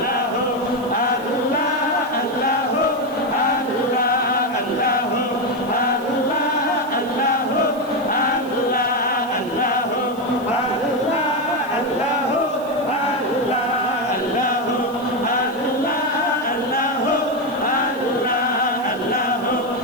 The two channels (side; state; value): right; noise; hiss, 22 dB below the sound